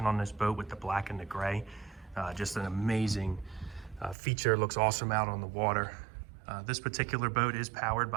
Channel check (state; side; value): drops out; left; at 4.2 s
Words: on this boat with the black and the gray. Just an amazing feature. Looks awesome out on the water. This particular boat is powered